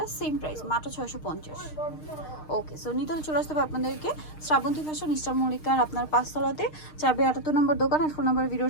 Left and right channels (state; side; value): late; right; 6.5 ms